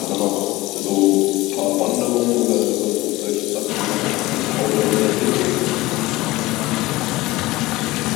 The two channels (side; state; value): right; quieter; 19.5 dB